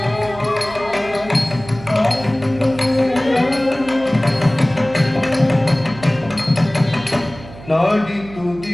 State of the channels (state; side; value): noise; right; hum, 17 dB below the sound